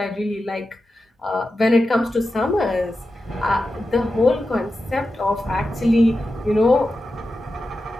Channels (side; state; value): both; normal; correlation 0.91